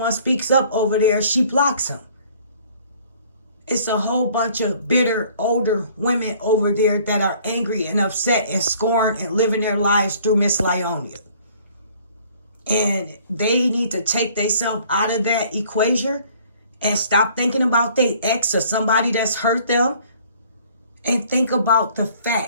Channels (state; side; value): inverted; both; correlation -0.56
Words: speaks up over there, she blocks them. It's a whole bunch of bitter, older women over there that are angry and upset and scorned and living their lives through Miss Lieonya. And they need to take themselves out of that equation and stop thinking about their ex or somebody that's hurt them, and think about the